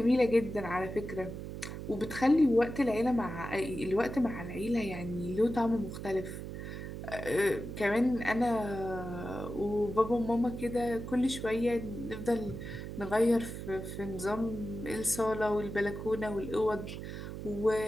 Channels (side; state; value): right; noise; hum, 8 dB below the sound